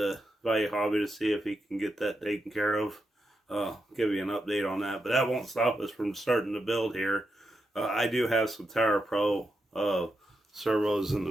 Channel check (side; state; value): both; normal; correlation 0.86